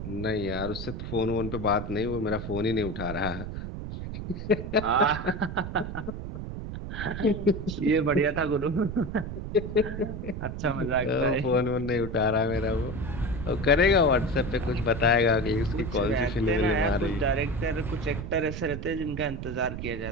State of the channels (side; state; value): right; noise; rumble, 7 dB below the sound